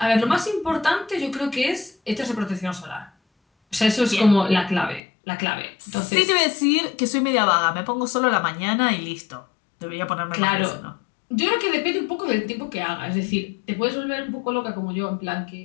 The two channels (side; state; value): right; drops out; at 5.0 s